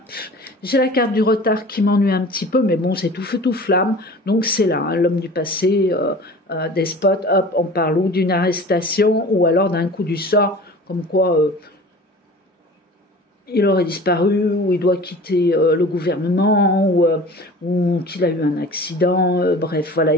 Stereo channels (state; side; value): normal; both; correlation 0.41